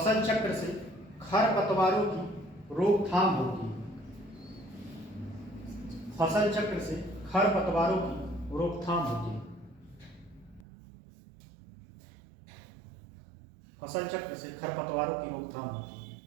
रोकथाम होती है। फसल चक्र से खरपतवारों की रोकथाम होती है। फसल चक्र से खरपतवारों की रोकथाम होती है।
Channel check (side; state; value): left; drops out; at 10.7 s